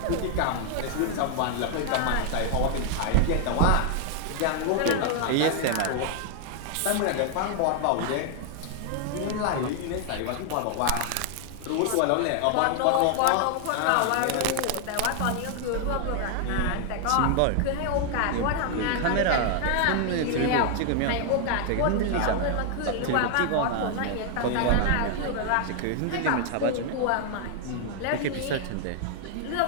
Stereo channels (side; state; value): both; different; correlation 0.00